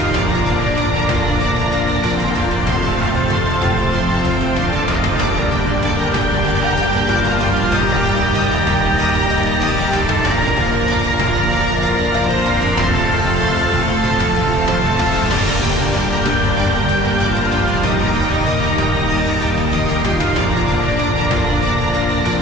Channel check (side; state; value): both; normal; correlation 0.54